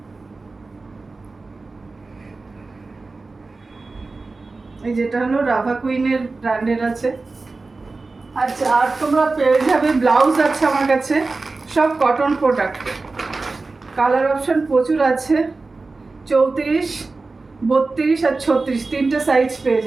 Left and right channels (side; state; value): left; quieter; 3.7 dB